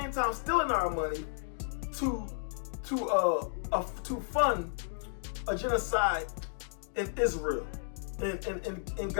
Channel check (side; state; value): right; silent; digital silence